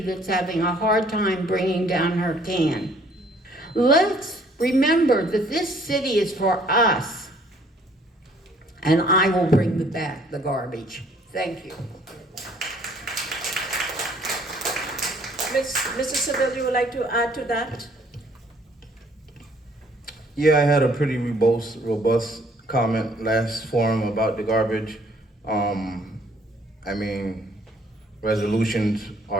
that's having a hard time bringing down her can. Let's remember that this city is for us, and I will bring back the garbage. Thank you. Mr. Seville, you would like to add to that? Yeah, I had a pretty robust comment last forum about the garbage. I mean, resolutions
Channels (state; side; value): normal; both; correlation 0.61